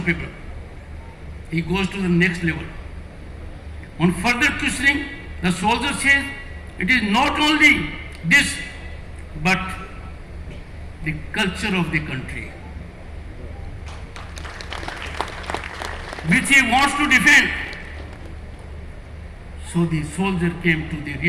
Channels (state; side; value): identical; both; correlation 1.00